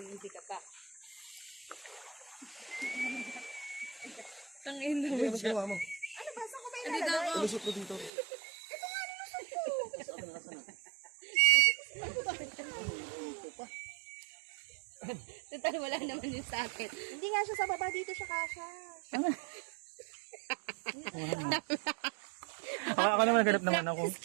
ka pa. Tangin na Ano ginawa mo? Ano ba? Saan ko ba Hindi daw ako. Lusot mo dito. Total, wala naman yung sa akin. Hindi nga siya sa baba. Dito siya kasha. Ako naman naghanap naman ako.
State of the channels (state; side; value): drops out; left; at 8.1 s